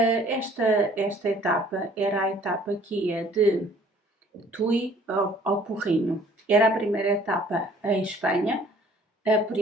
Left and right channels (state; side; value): normal; both; correlation 0.56